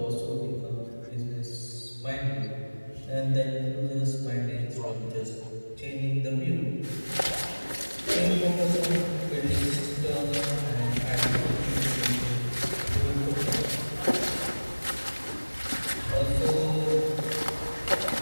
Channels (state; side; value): inverted; both; correlation -1.00